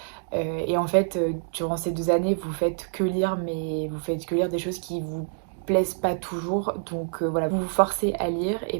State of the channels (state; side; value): silent; left; digital silence